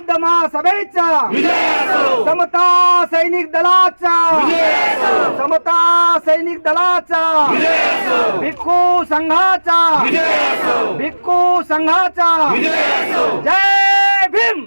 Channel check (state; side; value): inverted; both; correlation -1.00